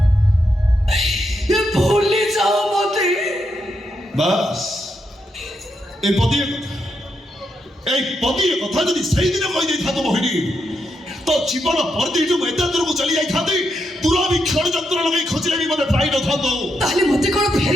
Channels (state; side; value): normal; both; correlation 0.82